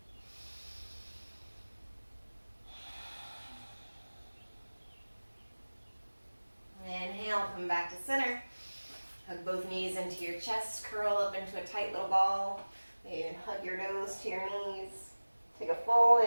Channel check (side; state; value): both; inverted; correlation -1.00